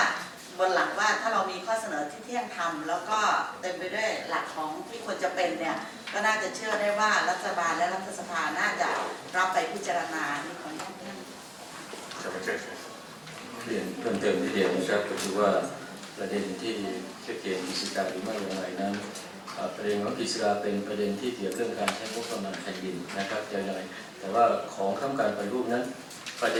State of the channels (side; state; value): both; identical; correlation 1.00